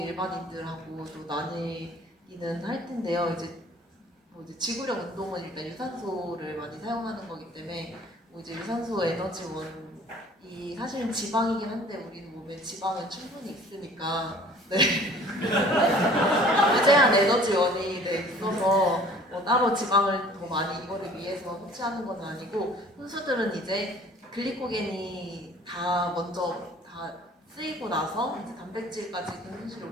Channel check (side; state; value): both; normal; correlation 0.51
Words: 또 나뉘기는 할 텐데요. 이제 지구력 운동은 일단 유산소를 많이 사용하는 거기 때문에 뭐 이제 유산소 에너지원이 사실은 지방이긴 한데 우리 몸에 지방은 충분히 있으니까 무제한 에너지원이 있어서 뭐 따로 지방을 더 많이 이거를 위해서 섭취하는 건 아니고 선수들은 이제 글리코겐이 다 먼저 다 쓰이고 나서 이제 단백질까지 근손실이